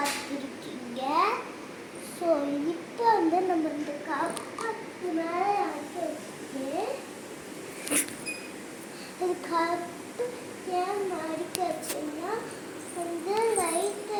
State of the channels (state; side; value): identical; both; correlation 1.00